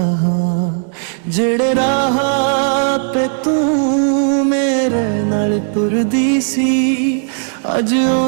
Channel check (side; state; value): left; silent; digital silence